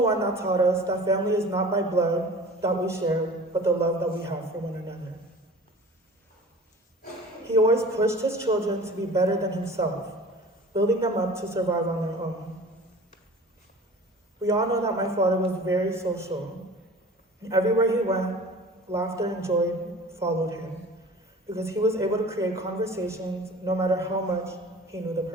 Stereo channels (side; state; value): both; normal; correlation 0.42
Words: that taught us that family is not by blood that we share, but the love that we have for one another. He always pushed his children to be better than himself, building them up to survive on their own. We all know that my father was very social. Everywhere he went, laughter and joy followed him, because he was able to create conversations no matter how much he knew the